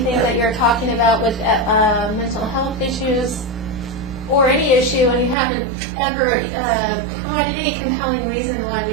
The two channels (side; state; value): left; drops out; at 5.4 s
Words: that you're talking about with mental health issues or any issue, and you haven't ever provided any compelling reason why we